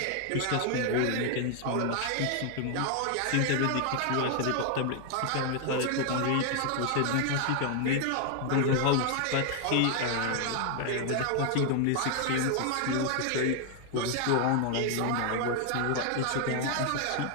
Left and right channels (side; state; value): both; different; correlation 0.00